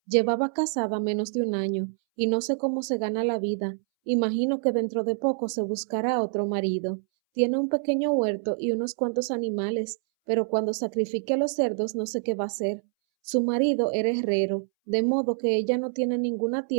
Llevaba casada menos de un año y no sé cómo se gana la vida. Imagino que dentro de poco se buscará otro marido. Tiene un pequeño huerto y unos cuantos animales, pero cuando sacrifique a los cerdos no sé qué va a hacer. Su marido era herrero, de modo que ella no tiene ninguna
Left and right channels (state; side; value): silent; left; 61 dB below the other